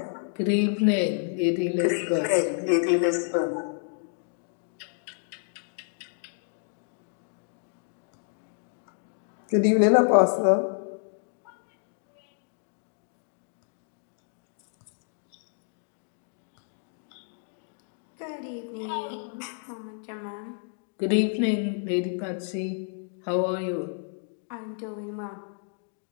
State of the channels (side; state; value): right; silent; digital silence